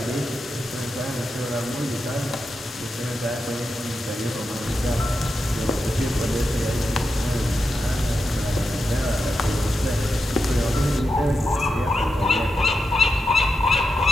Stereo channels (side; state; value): both; normal; correlation 0.87